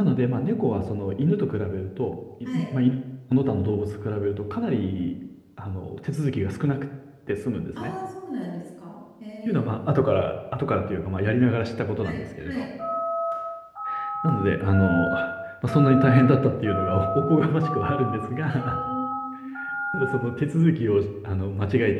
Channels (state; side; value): identical; both; correlation 1.00